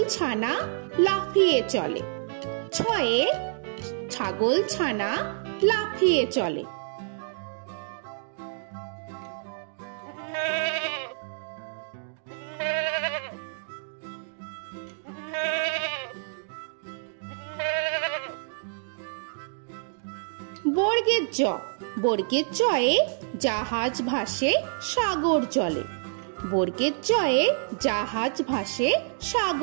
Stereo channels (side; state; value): left; silent; digital silence